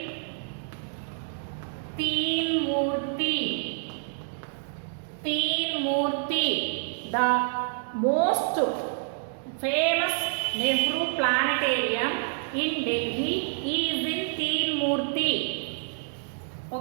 Teen Murti. The most famous Nehru Planetarium in Delhi is in Teen Murti.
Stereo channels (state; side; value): silent; left; digital silence